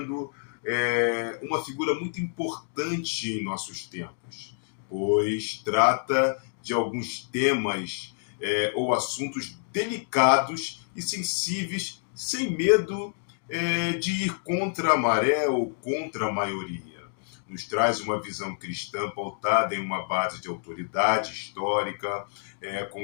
uma figura muito importante em nossos tempos, pois trata de alguns temas ou assuntos delicados e sensíveis, sem medo de ir contra a maré ou contra a maioria. Nos traz uma visão cristã pautada em uma base de autoridade histórica, com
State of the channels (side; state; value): right; silent; 60 dB below the other